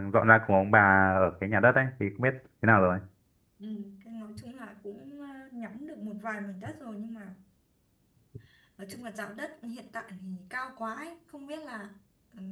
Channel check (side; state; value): both; identical; correlation 1.00